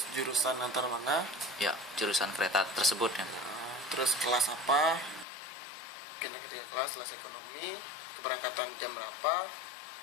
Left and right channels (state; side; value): drops out; right; at 5.2 s